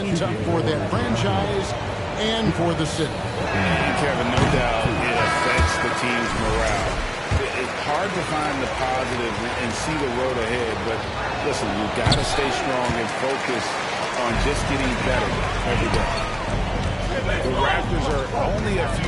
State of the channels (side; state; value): both; identical; correlation 1.00